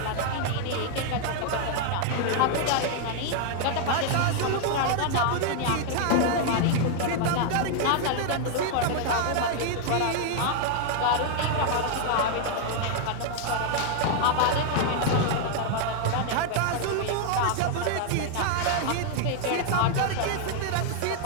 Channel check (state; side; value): different; both; correlation 0.00